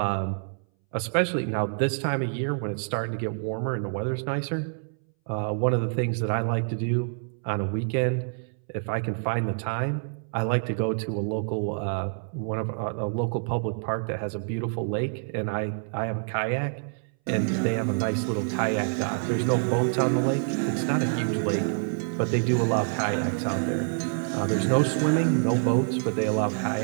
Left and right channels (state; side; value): silent; left; 60 dB below the other